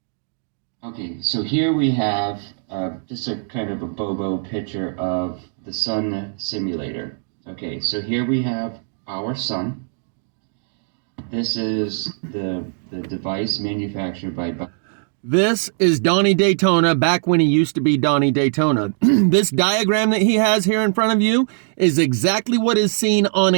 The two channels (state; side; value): silent; left; 65 dB below the other